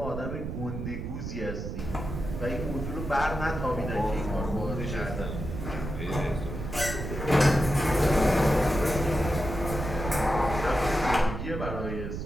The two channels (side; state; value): right; noise; rumble, 6 dB below the sound